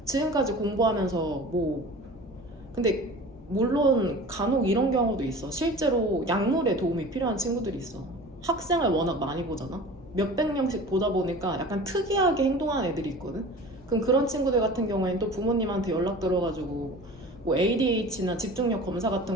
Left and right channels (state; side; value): normal; both; correlation 0.39